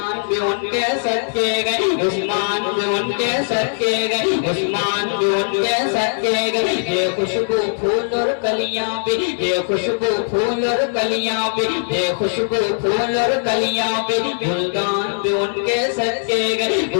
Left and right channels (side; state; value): right; silent; digital silence